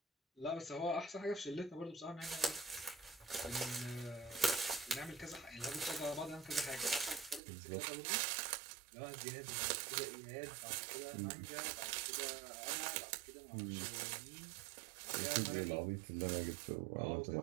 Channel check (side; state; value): left; drops out; at 7.4 s